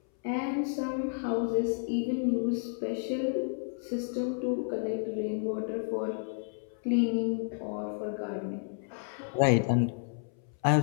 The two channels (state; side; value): silent; right; 57 dB below the other